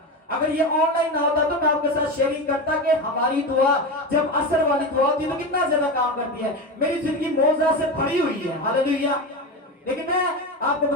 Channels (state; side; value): normal; both; correlation 0.21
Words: अगर ये ऑनलाइन ना होता तो मैं आपके साथ शेयरिंग करता कि हमारी दुआ जब असर वाली दुआ होती है तो कितना ज्यादा काम करती है। मेरी जिंदगी मौजा से भरी हुई है। हालेलुया। लेकिन मैं आपको